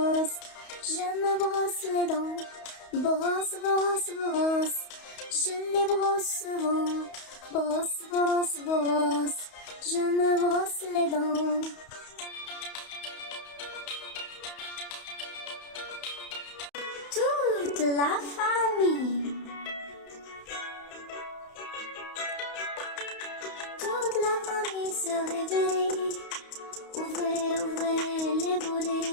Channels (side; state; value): right; late; 31 ms